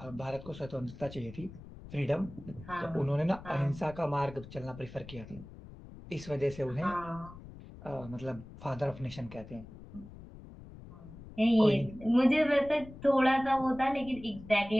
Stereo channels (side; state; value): left; noise; rumble, 16 dB below the sound